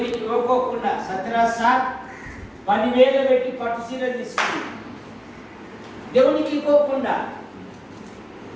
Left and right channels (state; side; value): identical; both; correlation 1.00